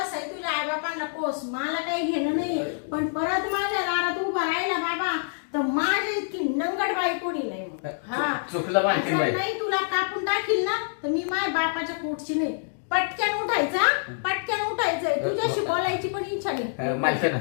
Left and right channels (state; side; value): silent; right; digital silence